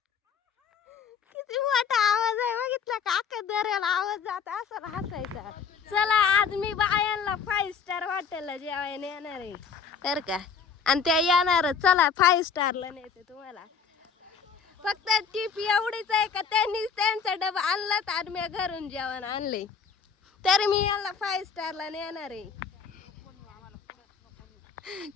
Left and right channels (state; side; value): quieter; right; 6.2 dB